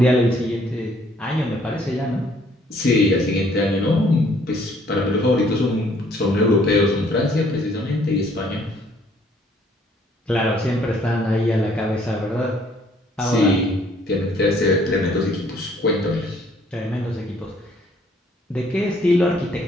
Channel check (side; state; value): both; normal; correlation 0.62